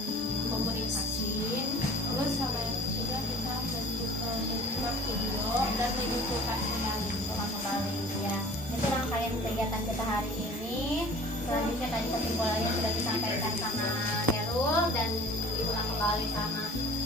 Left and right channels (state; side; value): normal; both; correlation 0.46